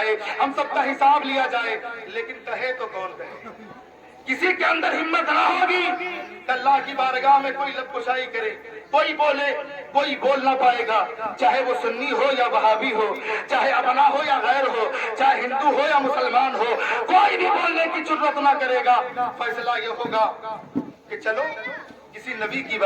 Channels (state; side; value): identical; both; correlation 1.00